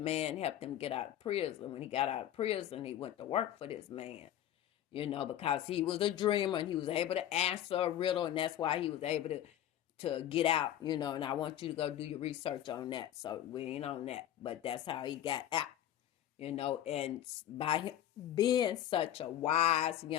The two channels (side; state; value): right; quieter; 11.6 dB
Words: man helped him get out of prison. When he got out of prison, he went to work for this man, because he was a dreamer, and he was able to answer a riddle, and that's why he was able to get out, and I want you to go do your research on that. So we ain't on that, but that's how he got out, and by him being such a wise